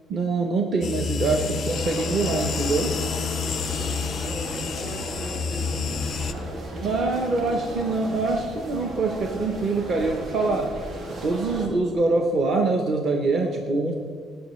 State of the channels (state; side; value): normal; both; correlation 0.66